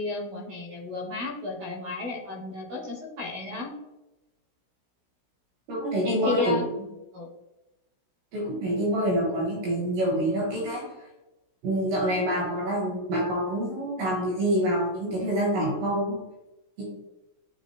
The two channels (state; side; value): late; left; 16 ms